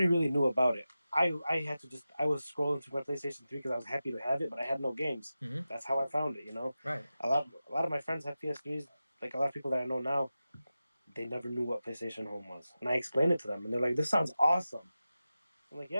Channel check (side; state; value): both; inverted; correlation -0.94